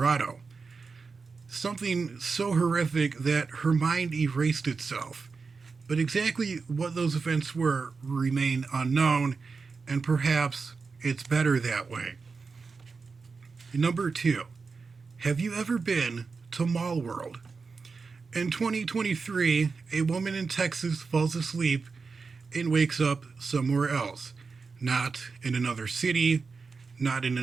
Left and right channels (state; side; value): quieter; left; 4.7 dB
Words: Something so horrific that her mind erased itself. But exactly what those events were remain unknown, and perhaps it's better that way. Number 2. Have you ever been to Mall World? In 2023, a woman in Texas falls asleep and wakes up somewhere else. Not in another city, not in